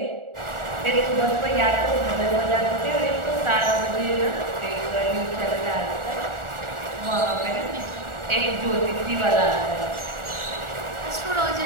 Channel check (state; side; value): late; left; 1.4 ms